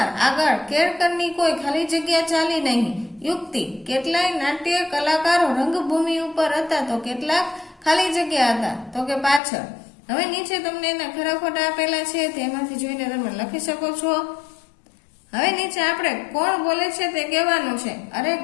આગળ. કેળકરની કોઈ ખાલી જગ્યા ચાલી નહીં. યુક્તિ. કેટલાય નાટ્ય કલાકારો રંગભૂમિ ઉપર હતા તો કેટલાક ખાલી જગ્યા હતા તો કે પાછળ. હવે નીચે તમને એના ખરા ખોટા આપેલા છે, તેમાંથી જોઈને તમે લખી શકો છો. હવે નીચે આપણે કોણ બોલે છે તે કહેવાનું છે. અરે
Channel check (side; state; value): right; drops out; at 9.4 s